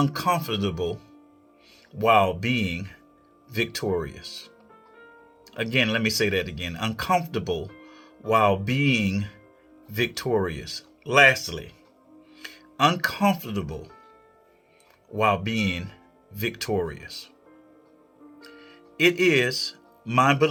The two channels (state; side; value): identical; both; correlation 1.00